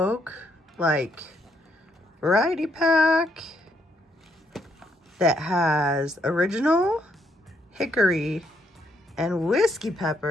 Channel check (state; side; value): normal; both; correlation 0.74